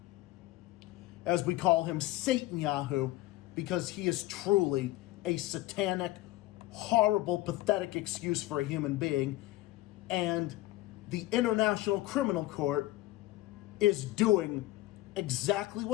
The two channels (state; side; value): quieter; right; 17.1 dB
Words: As we call him, SATANYAHU, because he is truly a satanic, horrible, pathetic excuse for a human being. And the International Criminal Court is doing exactly